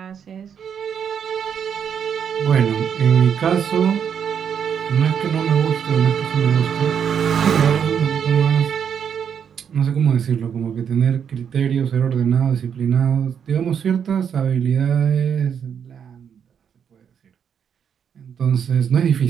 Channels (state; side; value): quieter; left; 7.8 dB